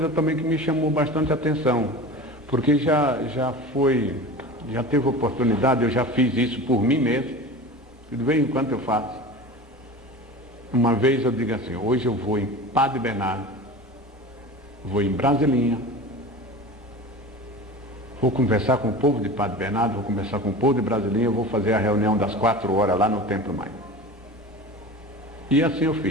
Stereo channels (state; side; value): normal; both; correlation 0.34